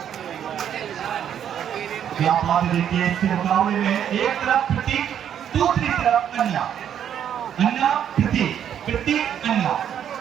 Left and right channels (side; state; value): left; quieter; 9.3 dB